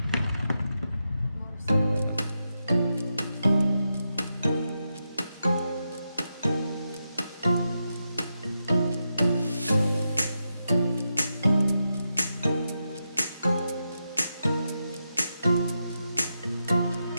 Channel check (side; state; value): both; inverted; correlation -0.87